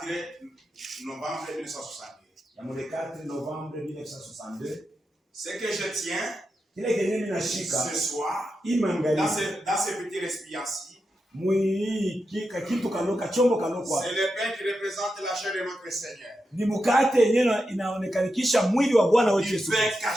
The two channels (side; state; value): both; normal; correlation 0.88